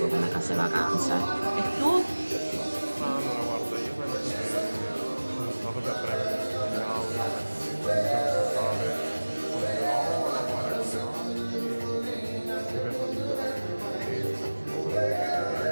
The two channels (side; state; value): both; inverted; correlation -1.00